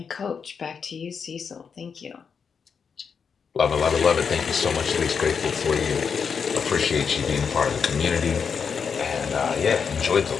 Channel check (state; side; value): quieter; right; 6.2 dB